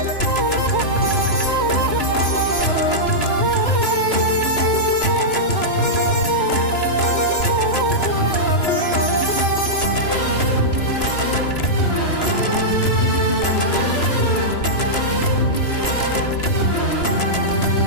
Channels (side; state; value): right; late; 3.0 ms